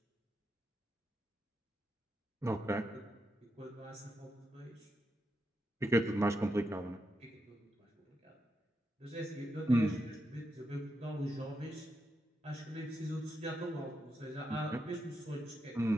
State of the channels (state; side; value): normal; both; correlation 0.84